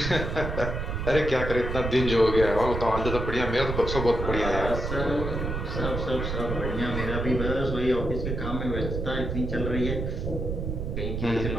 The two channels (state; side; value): noise; right; rumble, 3 dB below the sound